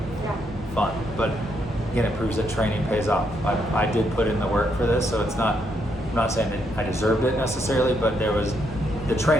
fun. But again, it proves that training pays off. I did put in the work for this, so it's not. I'm not saying that I deserved it necessarily, but there was the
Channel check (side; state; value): both; normal; correlation 0.76